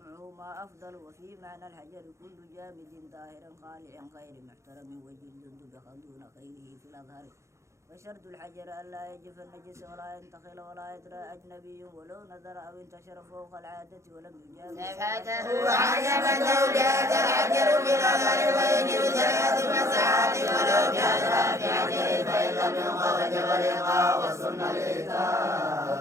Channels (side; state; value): left; late; 0.14 ms